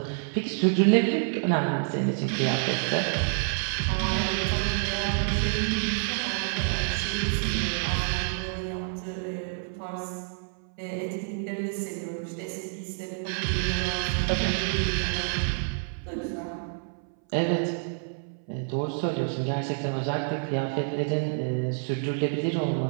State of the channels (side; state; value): left; silent; 59 dB below the other